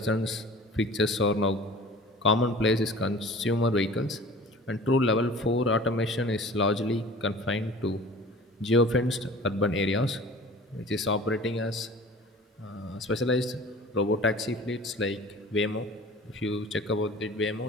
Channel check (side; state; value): both; normal; correlation 0.43